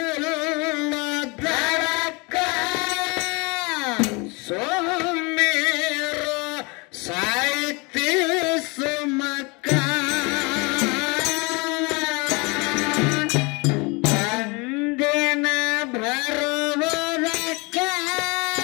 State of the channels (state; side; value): quieter; right; 28.2 dB